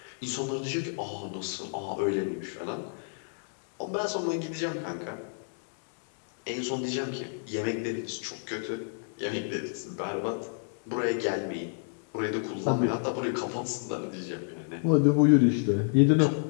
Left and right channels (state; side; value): silent; right; digital silence